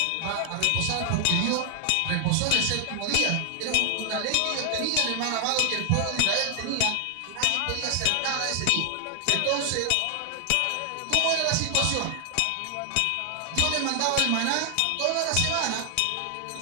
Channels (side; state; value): both; different; correlation 0.00